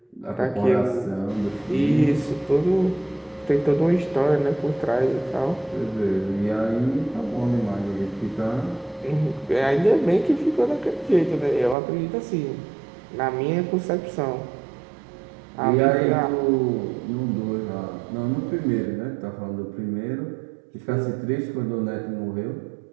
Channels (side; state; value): left; drops out; at 11.8 s